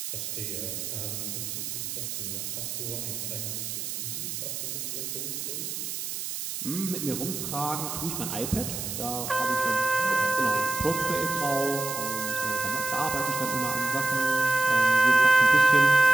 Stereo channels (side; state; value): right; noise; hiss, 5 dB below the sound